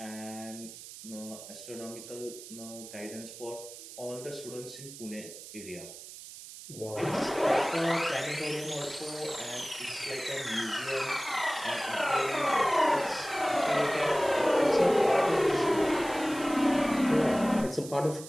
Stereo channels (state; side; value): noise; right; hiss, 14 dB below the sound